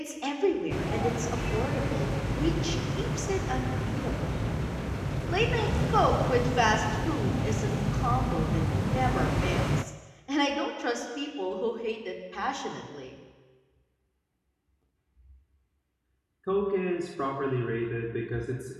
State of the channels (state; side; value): identical; both; correlation 1.00